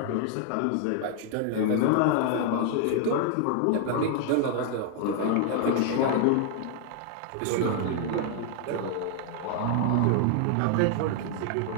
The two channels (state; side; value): different; both; correlation 0.00